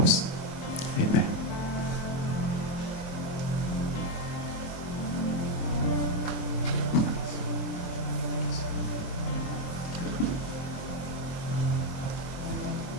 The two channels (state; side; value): late; right; 23 ms